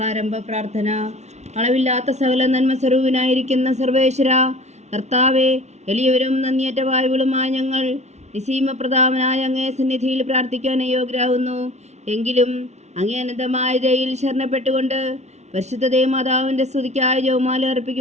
പ്രാർത്ഥന. അളവില്ലാത്ത സകല നന്മ സ്വരൂപനായിരിക്കുന്ന സർവേശ്വര കർത്താവെ, എളിയവരും നന്ദിയേറ്റ വായുകളുമായ ഞങ്ങൾ നിസീമപ്രതാപനായ അങ്ങേ സന്നിധിയിൽ പ്രാർത്ഥിക്കാൻ അയോഗ്യരാകുന്നു. എങ്കിലും അങ്ങേ അനന്തമായ ദയയിൽ ശരണപ്പെട്ടുകൊണ്ട് പരിശുദ്ധ ദൈവമാതാവിൻ്റെ സ്തുതിക്കായി ജപമാല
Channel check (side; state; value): left; late; 0.32 ms